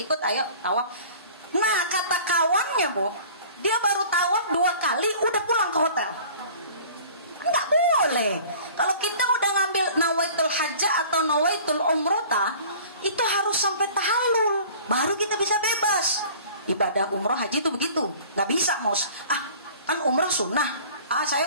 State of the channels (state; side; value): inverted; both; correlation -0.46